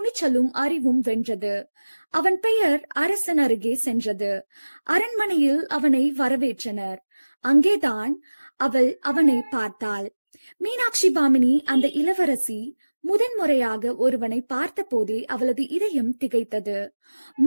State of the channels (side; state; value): both; inverted; correlation -1.00